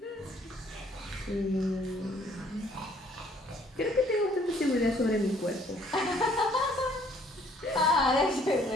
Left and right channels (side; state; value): both; normal; correlation 0.61